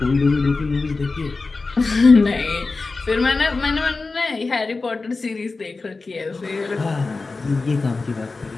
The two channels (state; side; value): quieter; right; 3.8 dB